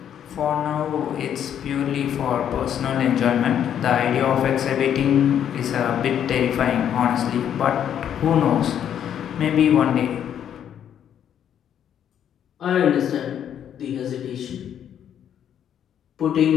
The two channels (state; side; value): quieter; right; 9.5 dB